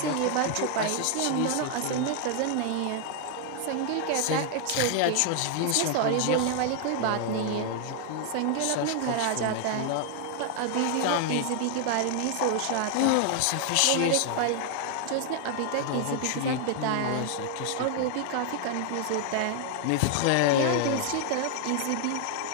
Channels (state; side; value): different; both; correlation 0.00